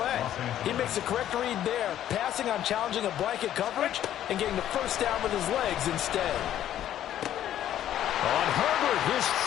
He makes the correct read there, passing on challenging a blanket coverage and getting the 1st down with his legs instead. On Herbert, his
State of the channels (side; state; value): right; quieter; 11.6 dB